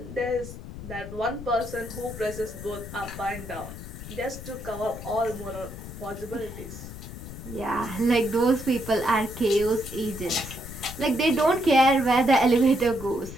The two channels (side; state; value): left; noise; rumble, 11 dB below the sound